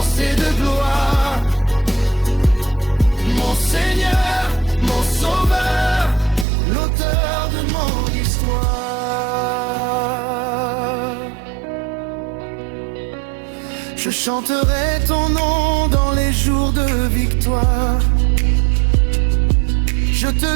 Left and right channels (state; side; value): drops out; left; at 6.5 s